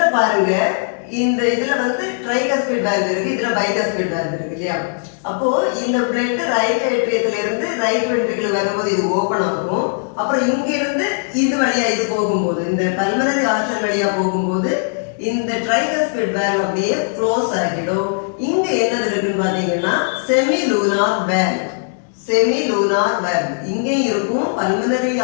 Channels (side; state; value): right; silent; digital silence